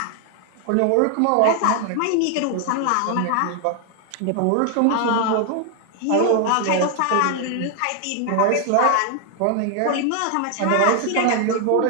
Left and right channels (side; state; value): both; different; correlation 0.00